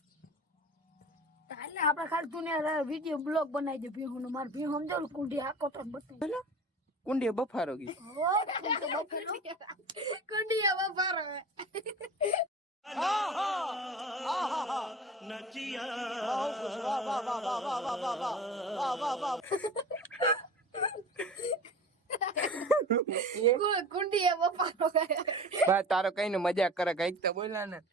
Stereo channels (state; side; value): normal; both; correlation 0.37